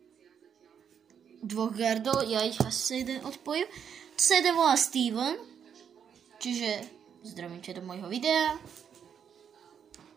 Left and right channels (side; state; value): left; quieter; 7.9 dB